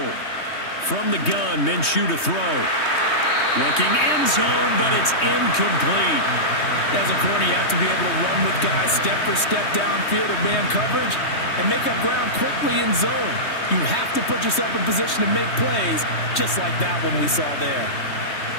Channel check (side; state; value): right; late; 3.2 ms